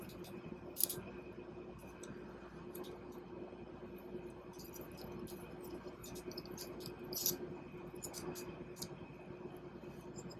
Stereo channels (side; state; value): both; identical; correlation 1.00